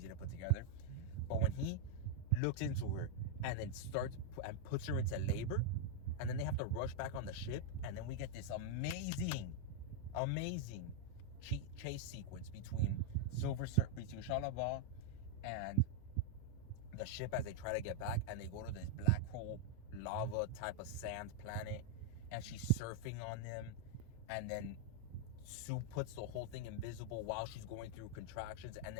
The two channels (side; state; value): both; different; correlation 0.00